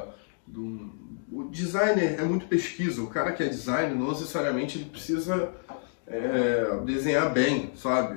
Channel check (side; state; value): right; silent; digital silence